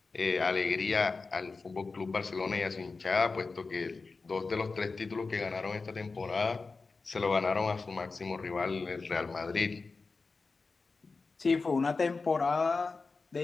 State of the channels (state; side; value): quieter; right; 4.1 dB